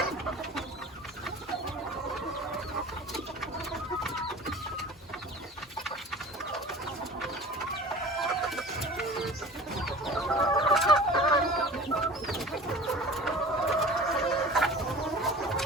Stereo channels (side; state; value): both; normal; correlation 0.40